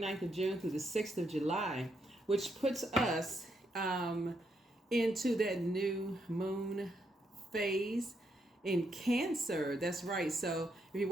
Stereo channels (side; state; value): both; normal; correlation 0.78